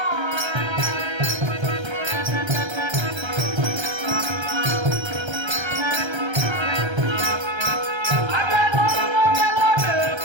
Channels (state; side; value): late; left; 1.3 ms